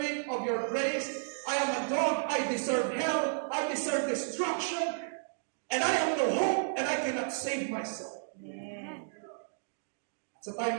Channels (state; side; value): silent; left; digital silence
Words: of your grace, I am a dog, I deserve hell, I deserve destruction, and I have no hope, and I cannot save myself. Amen. Sa time